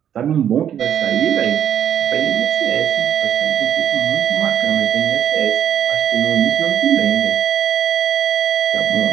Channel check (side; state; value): left; quieter; 9.6 dB